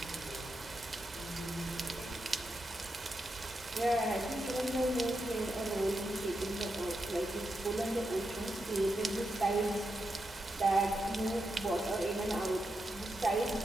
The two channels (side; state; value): both; normal; correlation 0.86